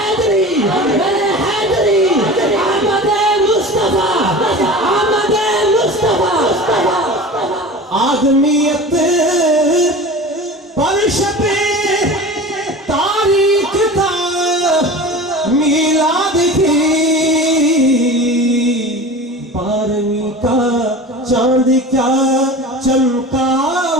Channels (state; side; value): normal; both; correlation 0.35